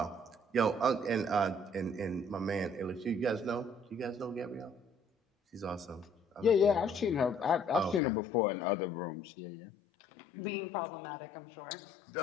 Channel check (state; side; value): drops out; right; at 8.0 s